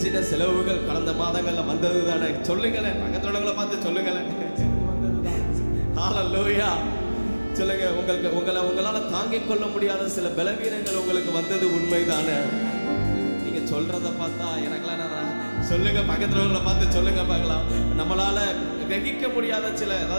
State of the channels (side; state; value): both; inverted; correlation -1.00